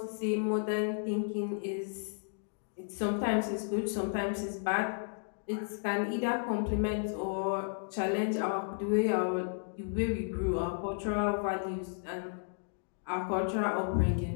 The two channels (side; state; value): right; silent; digital silence